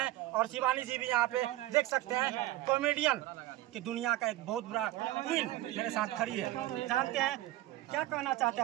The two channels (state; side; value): quieter; left; 16.1 dB